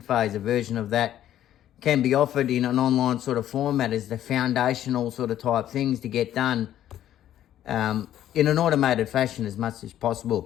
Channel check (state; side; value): quieter; right; 11.8 dB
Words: phase, a version of that, can be offered in an online sort of format as the foundational sort of type things to get done in an automated fashion as much as